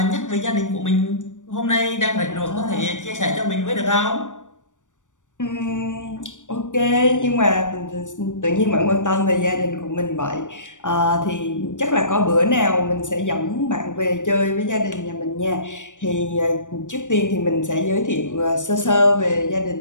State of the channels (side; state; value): right; late; 0.86 ms